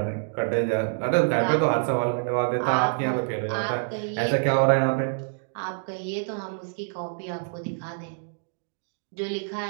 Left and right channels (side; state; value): left; silent; digital silence